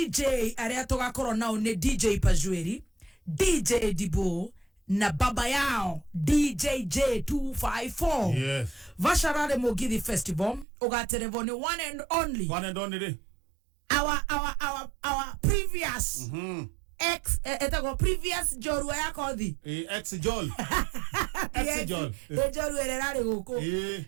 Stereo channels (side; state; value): left; drops out; at 10.7 s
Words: aria tugakorwo nao ni DJ Pajweri, DJ Dibo na baba yao DJJ254. Yes. Vasha Rally Mugithi Festival ugaterevoni one and only our previous previous jorua yako thi ex-jol jorua ererari guku